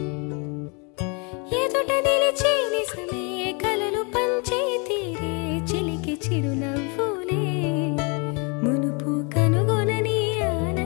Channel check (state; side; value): quieter; right; 33.4 dB